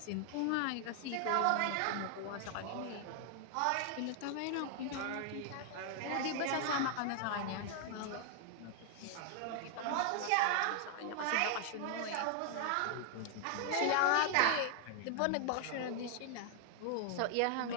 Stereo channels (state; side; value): different; both; correlation 0.00